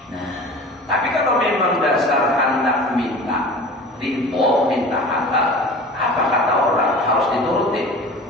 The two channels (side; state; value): both; normal; correlation 0.39